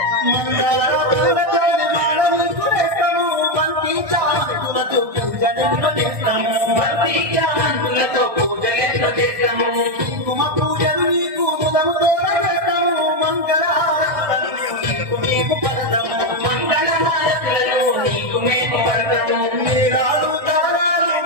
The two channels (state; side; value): late; left; 1.6 ms